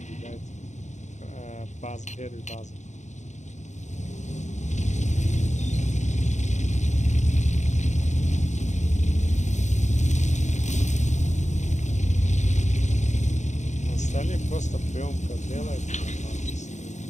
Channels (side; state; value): right; late; 0.34 ms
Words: База, первый база. Остальные просто приемка делает.